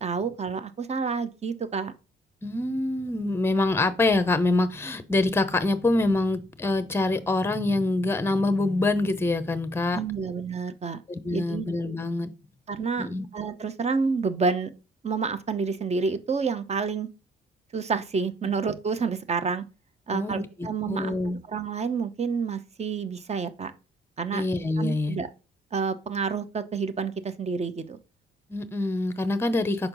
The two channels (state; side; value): normal; both; correlation 0.66